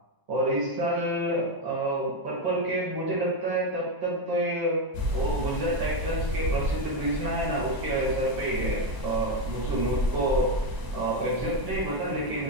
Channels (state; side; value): late; left; 1.0 ms